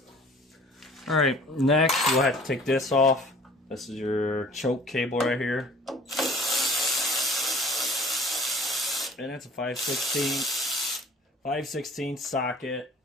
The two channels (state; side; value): normal; both; correlation 0.49